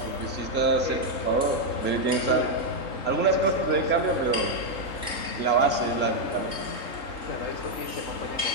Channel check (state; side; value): late; right; 3.8 ms